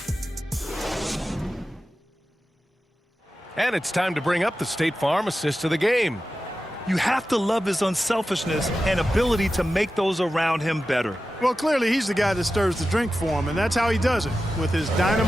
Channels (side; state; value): both; normal; correlation 0.93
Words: And it's time to bring up the State Farm assist of the game. You have to love his unselfishness and ability to make those around him better. Well, clearly he's the guy that stirs the drink for him, and that's how he does it, with his